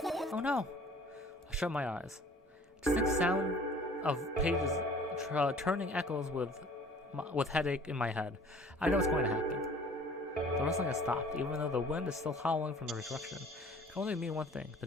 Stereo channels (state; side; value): normal; both; correlation 0.50